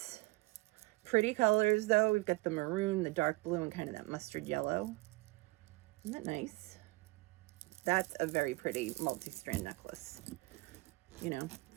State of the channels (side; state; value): left; quieter; 23.1 dB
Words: Pretty colors though. We've got the maroon, the dark blue, and kind of that mustard yellow. Isn't that nice? That's a very pretty multi-strand necklace. You know,